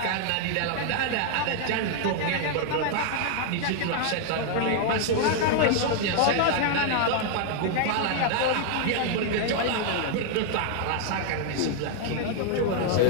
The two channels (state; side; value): different; both; correlation 0.00